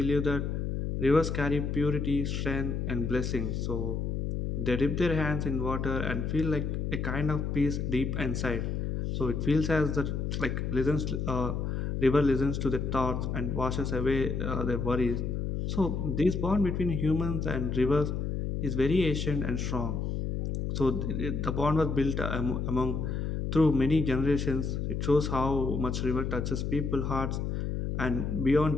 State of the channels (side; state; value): left; noise; hum, 1 dB below the sound